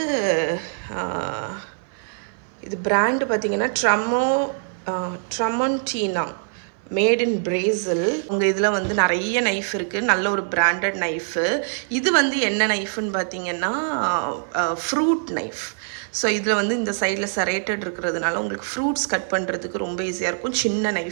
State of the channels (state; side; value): silent; left; 58 dB below the other